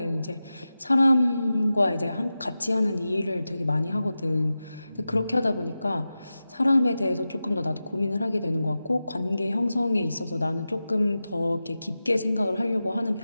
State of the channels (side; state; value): both; inverted; correlation -0.94